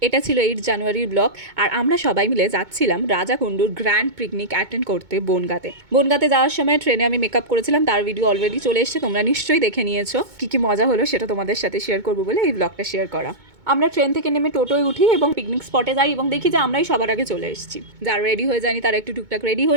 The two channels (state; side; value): late; left; 2.2 ms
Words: এটা ছিল 8 জানুয়ারির ব্লগ। আর আমরা সবাই মিলে যাচ্ছিলাম রাজাকুণ্ডুর গ্র্যান্ড পিকনিক অ্যাটেন্ড করতে বনগাঁতে। বনগাঁতে যাওয়ার সময় ট্রেনে আমি মেকআপ করেছিলাম, তার ভিডিও অলরেডি চলে এসেছে, তোমরা নিশ্চয়ই দেখে নিয়েছো। কী মজা হলো সেটা তোমাদের সাথে শেয়ার করবো বলে এই ব্লগটা শেয়ার করা। আমরা ট্রেন থেকে নেমে টোটোয় উঠি এবং পিকনিক স্পটে যাই এবং দেখি যে আমরাই সবার আগে চলে এসেছি। যারা রেডি হয়ে যায়নি তারা একটু টুকটাক রেডি